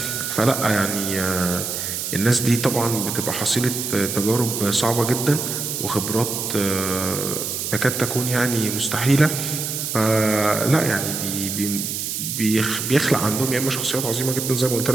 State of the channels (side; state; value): right; noise; hiss, 3 dB below the sound